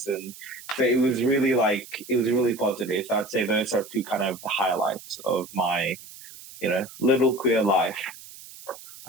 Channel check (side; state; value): right; noise; hiss, 17 dB below the sound